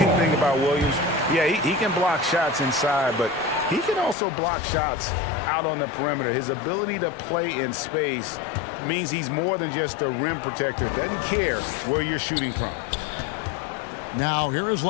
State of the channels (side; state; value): right; drops out; at 4.2 s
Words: thing about Williams, yeah, he can block shots inside, but he can also block shots out on the perimeter. His ability to play in space means he's more than just a rim protector. Doesn't care where you're shooting from. Now here is